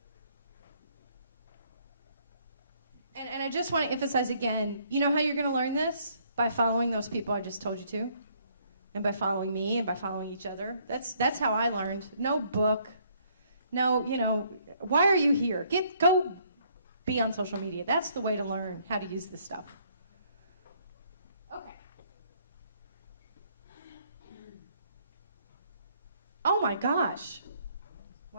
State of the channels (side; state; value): both; inverted; correlation -0.66